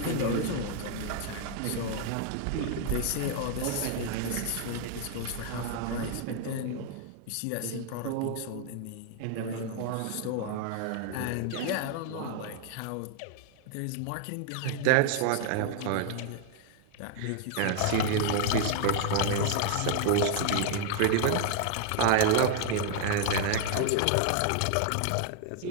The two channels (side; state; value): both; different; correlation 0.00